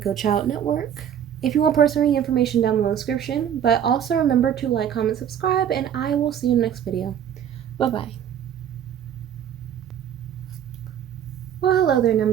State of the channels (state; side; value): quieter; left; 9.4 dB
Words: Child Network. If you want personal information, down below in the description. But also remember to like, comment, subscribe, and I will see you in the next video. Bye-bye. Well, hello there,